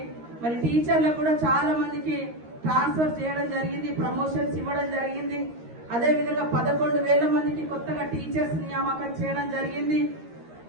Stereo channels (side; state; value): left; late; 13 ms